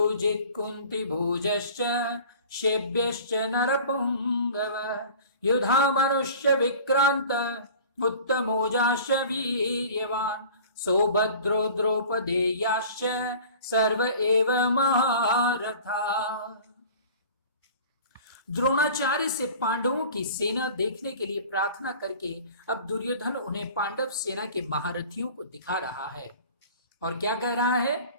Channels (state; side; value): inverted; both; correlation -0.43